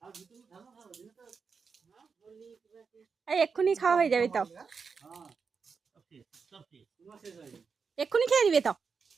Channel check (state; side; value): quieter; left; 5.5 dB